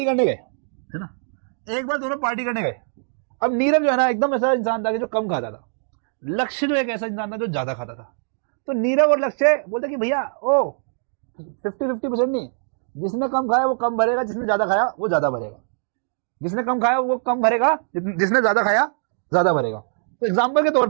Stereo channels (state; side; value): silent; left; digital silence